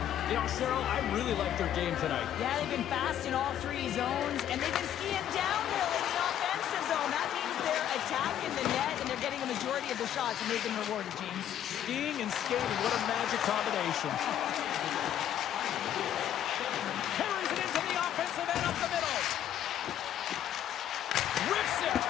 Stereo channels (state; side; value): quieter; right; 10.7 dB